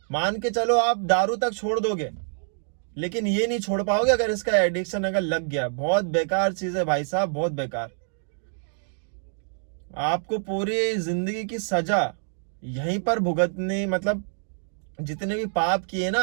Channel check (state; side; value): silent; left; 61 dB below the other